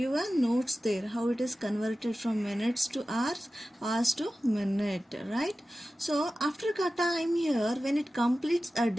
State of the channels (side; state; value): both; normal; correlation 0.94